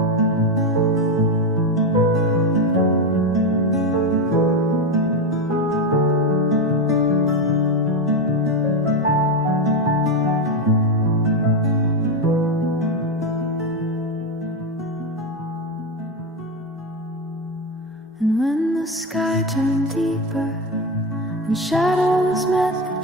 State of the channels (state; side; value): normal; both; correlation 0.13